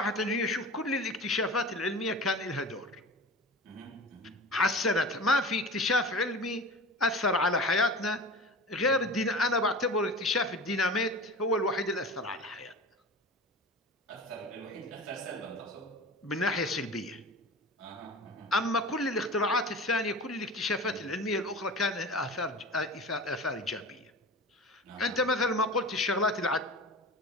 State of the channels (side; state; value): both; normal; correlation 0.34